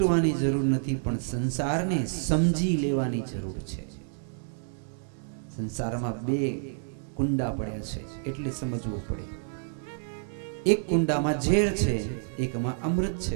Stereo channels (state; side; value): silent; left; digital silence